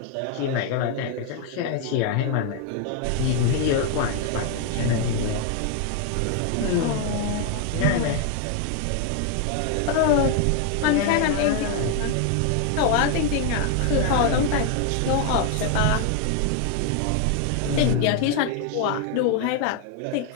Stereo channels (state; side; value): different; both; correlation 0.00